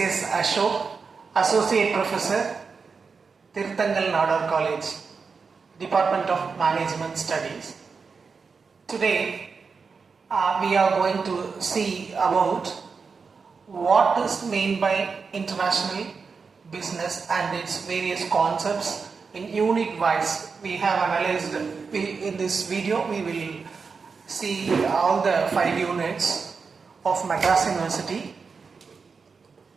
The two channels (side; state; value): left; quieter; 5.1 dB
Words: Ashok, Associate Professor, Tirthangal Nadar College, Department of Management Studies. Today we are going to see about what is meant by international business and its various concepts in unit wise. We have analyzed, in this video we will see all the 5 units of Madras University.